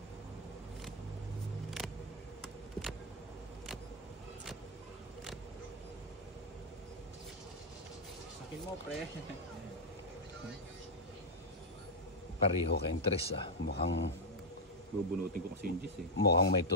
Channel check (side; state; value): both; normal; correlation -0.01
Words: Sakin mo, pre. Pareho kayong 3 ah. Bubunutin ko kasi yung G's eh. Mukhang may